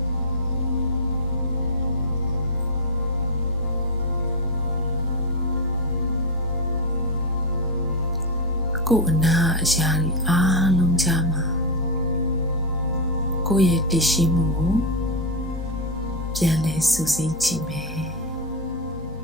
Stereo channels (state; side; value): normal; both; correlation 0.04